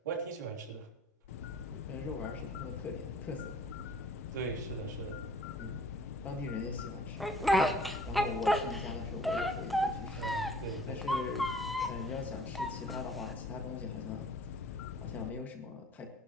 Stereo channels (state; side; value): normal; both; correlation 0.52